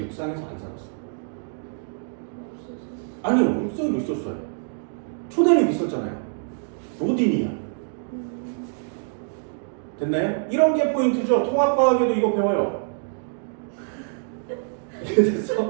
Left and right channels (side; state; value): left; silent; digital silence